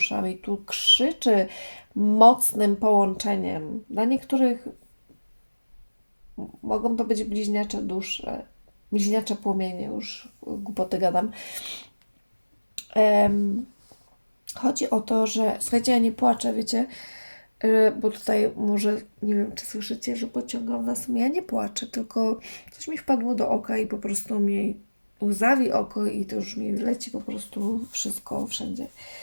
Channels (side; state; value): both; inverted; correlation -1.00